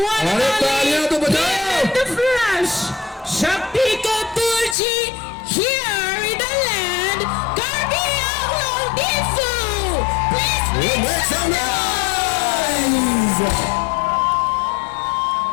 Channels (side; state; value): right; drops out; at 4.8 s